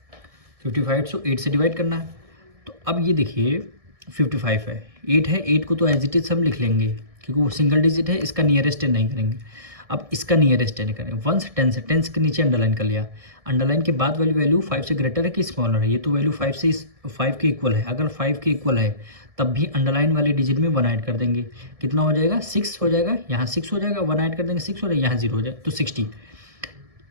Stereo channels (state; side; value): late; left; 1.7 ms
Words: 55 को 8 से डिवाइड करना है। तो अब ये देखिए 55 है, 8 है, 8 को तो एज इट इज हम लिख लेंगे क्योंकि वो सिंगल डिजिट है, इसका नियरेस्ट नहीं करेंगे। अब इसका नियरेस्ट नहीं करेंगे, वंस टेंस है, टेंस के नीचे अंडरलाइन कर लिया। अंडरलाइन के बाद वाली वैल्यू 5 से ग्रेटर है कि स्मॉलर है, ये तो वैल्यू 5 के इक्वल है। अगर 5 के इक्वल है तब भी अंडरलाइन वाली डिजिट में 1 ऐड कर देंगे, कितना हो जाएगा, 6 हो जाएगा, यहाँ 6 हो जाएगा, 1 ऐड कर देंगे 6 हो जाएगा, यहाँ 0 हो जाएगा, तो 60।